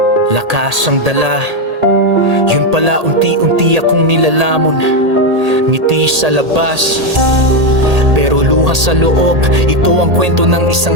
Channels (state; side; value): late; left; 1.8 ms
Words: lakas ang dala, yun pala unti-unti akong nilalamon. Ngiti sa labas, pero luha sa loob. Ito ang kwento ng